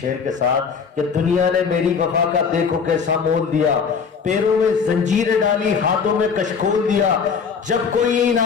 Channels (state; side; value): quieter; right; 6.0 dB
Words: के साथ कि दुनिया ने मेरी वफा का देखो कैसा मोल दिया, पैरों में जंजीरें डाली, हाथों में कशकोल दिया, जब कोई